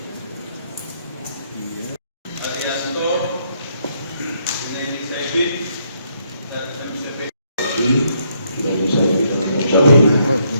Arianto, Leni Saibin, dan MCP.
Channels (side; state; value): both; inverted; correlation -0.73